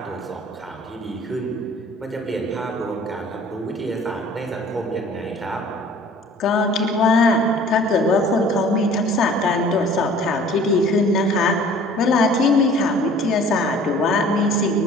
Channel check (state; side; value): normal; both; correlation 0.50